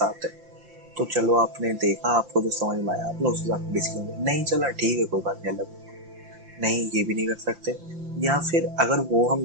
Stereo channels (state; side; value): late; left; 5.8 ms